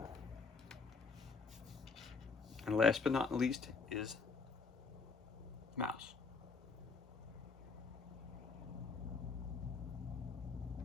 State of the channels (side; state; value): right; quieter; 4.7 dB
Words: And last but not least is mouse.